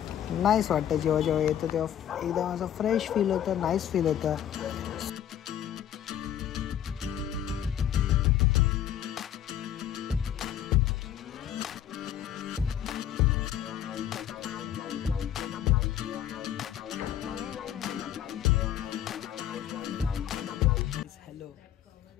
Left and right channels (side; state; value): right; quieter; 10.6 dB